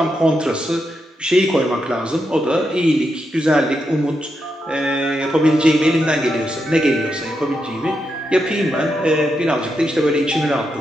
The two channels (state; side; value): normal; both; correlation 0.84